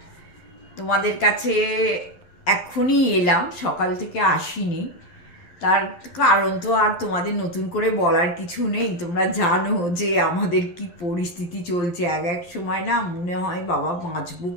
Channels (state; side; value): late; right; 11 ms